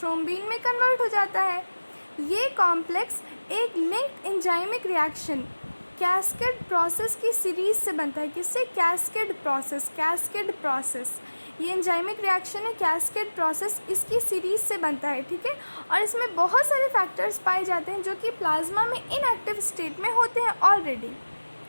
में कन्वर्ट हो जाता है। ये कॉम्प्लेक्स एक linked enzymic reaction cascade process की सीरीज से बनता है। किससे? Cascade process. ये एंजाइमिक रिएक्शन है कैस्केड प्रोसेस, इसकी सीरीज से बनता है, ठीक है। और इसमें बहुत सारे फैक्टर्स पाए जाते हैं जो कि प्लाज्मा में इनएक्टिव स्टेट में होते हैं ऑलरेडी।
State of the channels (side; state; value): both; inverted; correlation -1.00